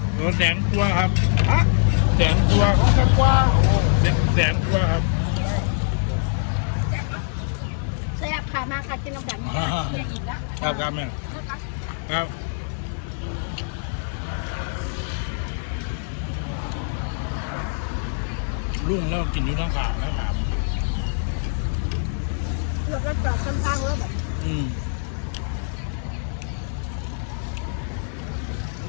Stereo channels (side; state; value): right; silent; digital silence